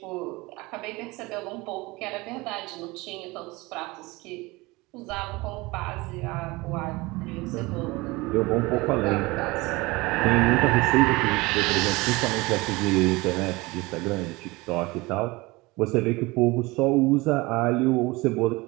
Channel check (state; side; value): quieter; left; 22.8 dB